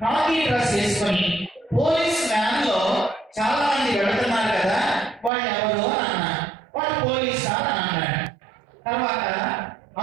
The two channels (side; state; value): left; drops out; at 5.3 s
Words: కాకి డ్రెస్ వేసుకొని పోలీస్ వ్యాన్ లో చాలా మంది వెళుతున్నారు కదా, వాళ్ళు ఎవరు అని అన్నా. వాళ్ళు పోలీస్ సార్ అని అన్నాడు. తర్వాత